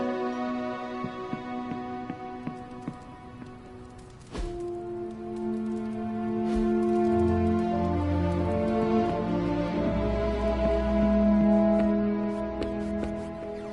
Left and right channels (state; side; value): identical; both; correlation 1.00